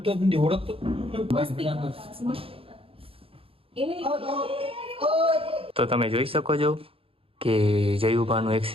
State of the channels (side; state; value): left; late; 0.27 ms